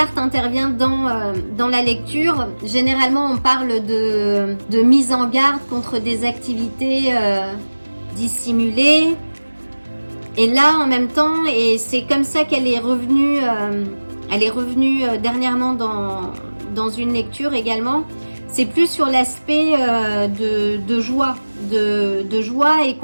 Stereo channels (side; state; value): both; inverted; correlation -1.00